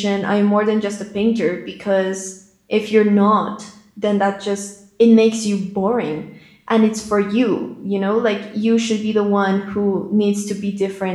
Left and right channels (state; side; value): identical; both; correlation 1.00